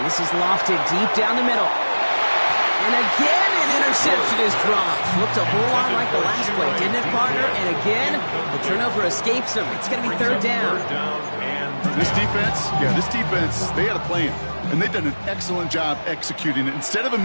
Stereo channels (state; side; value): inverted; both; correlation -1.00